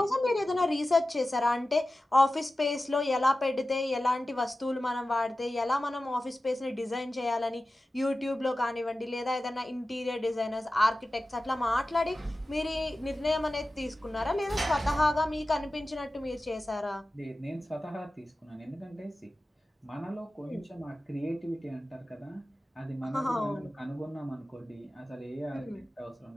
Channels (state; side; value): normal; both; correlation 0.95